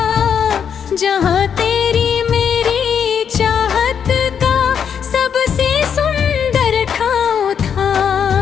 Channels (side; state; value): right; quieter; 7.7 dB